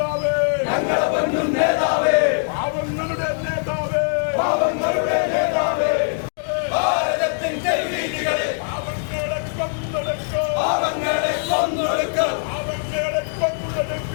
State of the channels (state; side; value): silent; right; digital silence